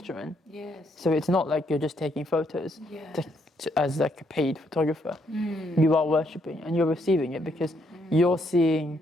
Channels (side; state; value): both; normal; correlation 0.73